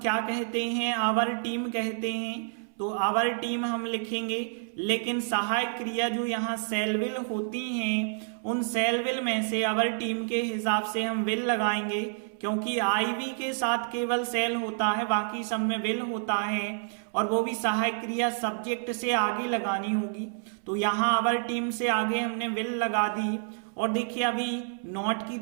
कहते हैं, आवर टीम कहते हैं, तो आवर टीम हम लिखेंगे, लेकिन सहायक क्रिया जो यहाँ सेल विल होती हैं उन सेल विल में से आवर टीम के हिसाब से हम विल लगाएंगे, क्योंकि आईवी के साथ केवल सेल होता है, बाकी सब में विल होता है, और वो भी सहायक क्रिया सब्जेक्ट से आगे लगानी होगी। तो यहाँ आवर टीम से आगे हमने विल लगा दी। और देखिए अभी नॉट की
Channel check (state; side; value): silent; left; 59 dB below the other